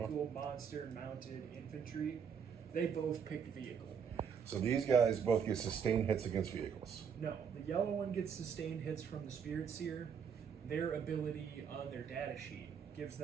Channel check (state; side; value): quieter; left; 7.0 dB